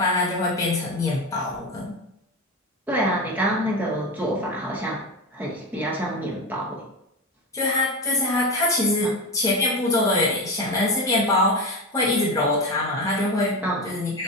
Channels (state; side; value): normal; both; correlation 0.20